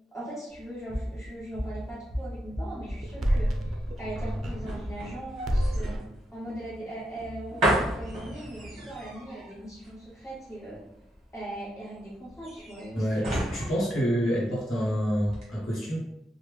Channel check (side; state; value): both; normal; correlation 0.82